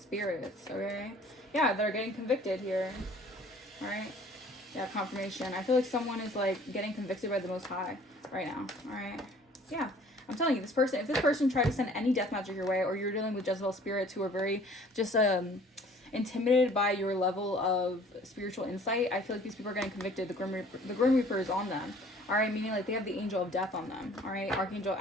okay? Yeah, they're getting convicted here. All right? Yeah, confirmation. I feel like someone is, like, getting convicted by the Most High right now. All right? Yeah. I'm telling you, if this person tried to send any death magic your way, or you're dealing with Jezebel spirits who are very just intimidated by your level of spiritual insight, I feel like these people are getting convicted. The Grim Reaper is on them. All right, meaning like they have the angel of death on them. All right, Archangel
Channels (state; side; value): normal; both; correlation 0.52